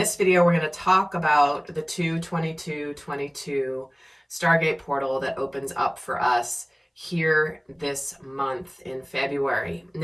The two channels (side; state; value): both; identical; correlation 1.00